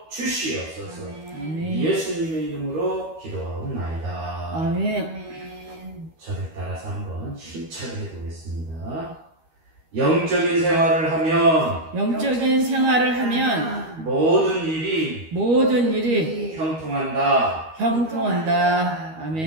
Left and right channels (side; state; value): left; late; 13 ms